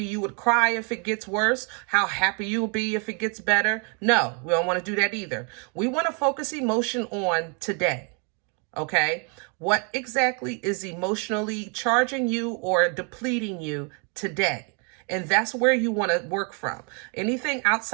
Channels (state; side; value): quieter; left; 36.6 dB